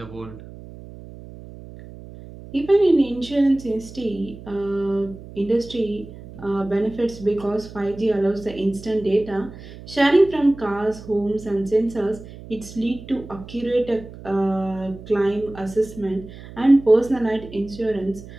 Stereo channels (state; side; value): noise; right; hum, 16 dB below the sound